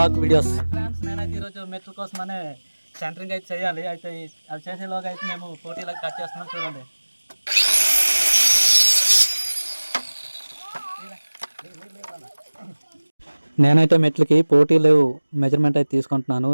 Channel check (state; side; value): inverted; both; correlation -1.00